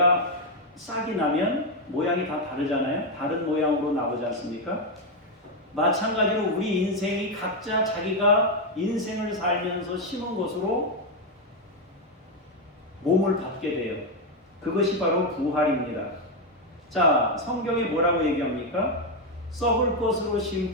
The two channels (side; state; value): both; normal; correlation 0.04